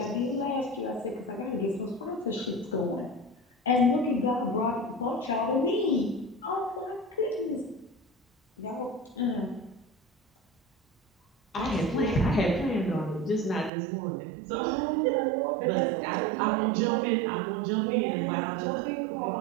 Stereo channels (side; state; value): left; drops out; at 13.7 s